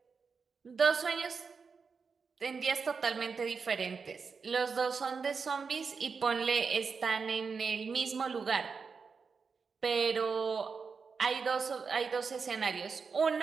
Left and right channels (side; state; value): left; quieter; 5.3 dB